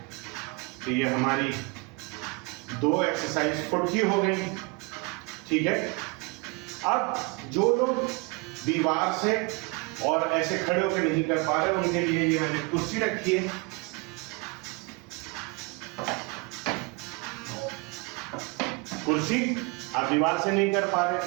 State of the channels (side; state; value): left; quieter; 28.6 dB